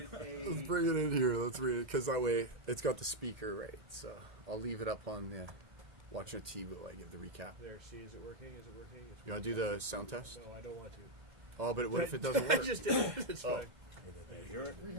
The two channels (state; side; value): late; left; 2.1 ms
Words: a... Let's bring it in here. Let's read it because that way it's got the speaker right. So I'll leave it up on the watching TV while I give the recap. There, see, is it working? Is it working? You want to do the sound test? No, I don't want to. Oh, but what if it doesn't work? Just did it. It's fine. You hear it?